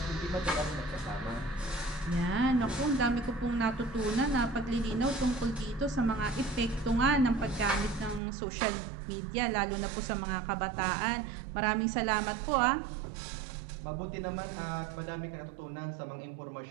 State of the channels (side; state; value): left; drops out; at 8.2 s